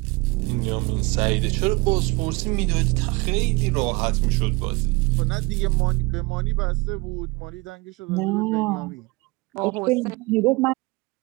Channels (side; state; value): left; quieter; 25.1 dB